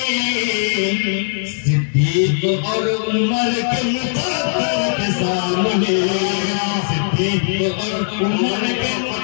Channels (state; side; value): silent; right; 67 dB below the other